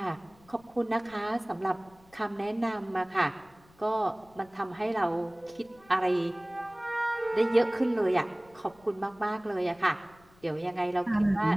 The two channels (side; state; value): left; noise; rumble, 29 dB below the sound